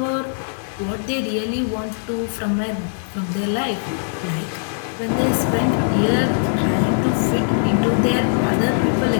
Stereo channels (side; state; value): right; silent; digital silence